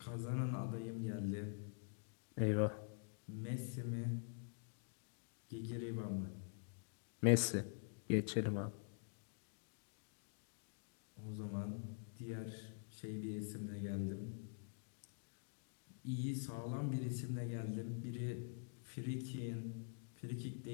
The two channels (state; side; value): silent; right; digital silence